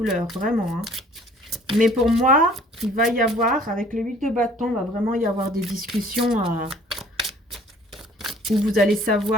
vraiment, hein. Mais pour moi, il va y avoir, avec le 8 de bâton, il va vraiment y avoir des discussions où vous allez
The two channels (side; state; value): both; normal; correlation 0.54